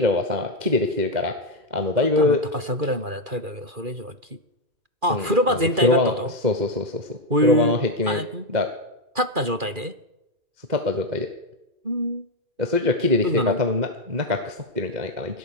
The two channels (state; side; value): late; left; 2.4 ms